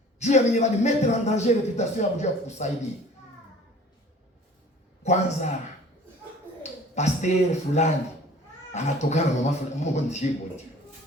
Juu ya mwenye mettre en danger réputation ya Mungu kukusaidia. Kwanza pasteur fulani anatokana na mama fulani, Mungu ndiye bonje.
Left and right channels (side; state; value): both; normal; correlation 0.49